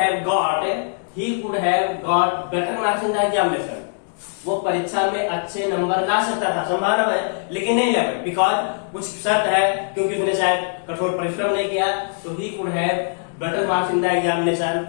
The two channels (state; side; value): silent; right; digital silence